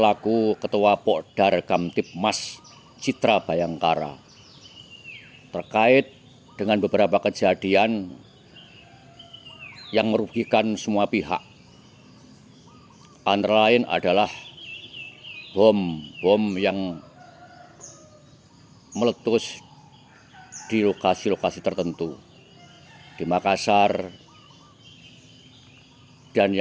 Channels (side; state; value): both; identical; correlation 1.00